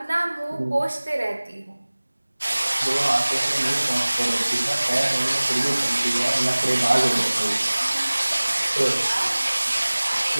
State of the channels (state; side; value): inverted; both; correlation -1.00